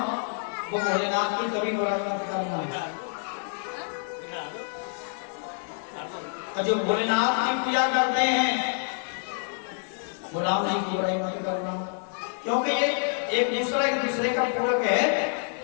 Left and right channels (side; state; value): right; silent; 60 dB below the other